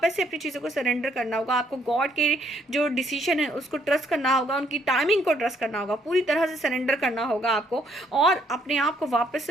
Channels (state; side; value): normal; both; correlation 0.69